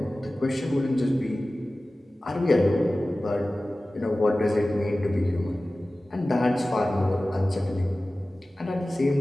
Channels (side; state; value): both; normal; correlation 0.96